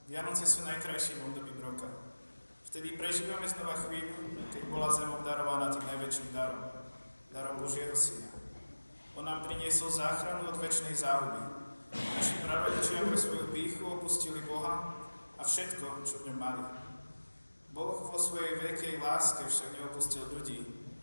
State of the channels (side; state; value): both; inverted; correlation -1.00